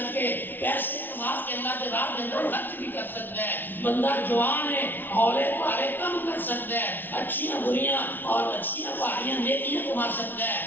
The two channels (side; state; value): right; late; 0.092 ms